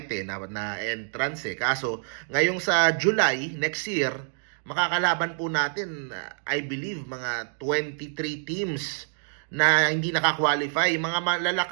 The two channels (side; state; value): left; silent; 60 dB below the other